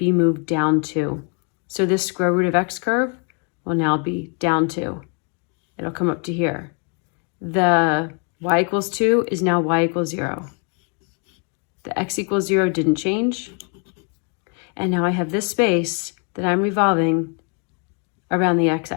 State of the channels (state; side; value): quieter; right; 37.8 dB